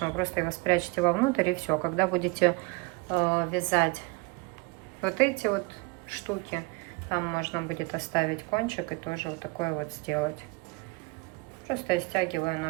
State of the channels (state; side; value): quieter; left; 26.9 dB